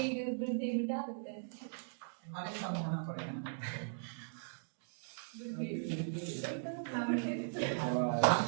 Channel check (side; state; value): left; silent; digital silence